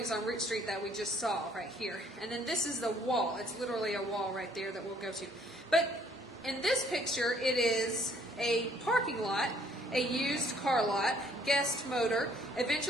on Root Street that we just saw right here. And then this is the wall. It's literally a wall right there that we'll go to. But in this picture, it is a parking lot, a used car lot, Guest Motor.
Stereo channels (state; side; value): normal; both; correlation 0.63